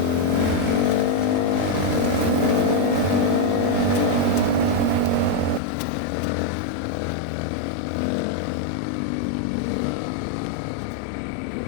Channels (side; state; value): right; drops out; at 5.6 s